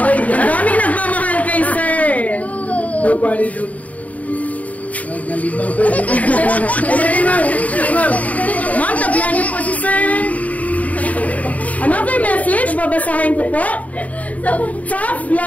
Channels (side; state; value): right; late; 0.070 ms